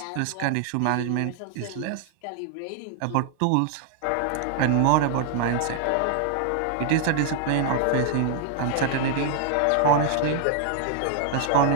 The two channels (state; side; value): different; both; correlation 0.00